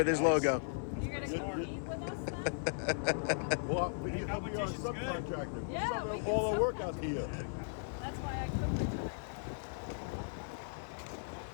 his logo. You're gonna compete with us then? Well, we Hey, need to be our competition's good. subcontractor. Yeah, we can all the sub- work out here. That's why I couldn't retire.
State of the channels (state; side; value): silent; right; digital silence